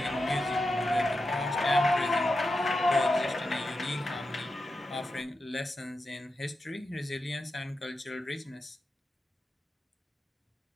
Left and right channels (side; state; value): both; normal; correlation 0.89